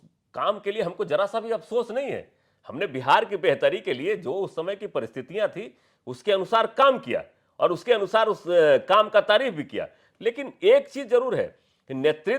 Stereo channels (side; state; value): both; identical; correlation 1.00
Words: काम के लिए हमको जरा सा भी अफसोस नहीं है। हमने बिहार की बेहतरी के लिए जो उस समय की परिस्थितियां थी उसके अनुसार काम किया और उसके अनुसार उस काम का तारीफ भी किया। लेकिन एक चीज जरूर है कि